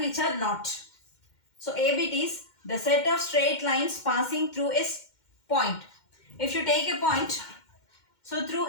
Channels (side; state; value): right; late; 2.1 ms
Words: which are not. So A bit is the set of straight lines passing through a point. If you take a point, so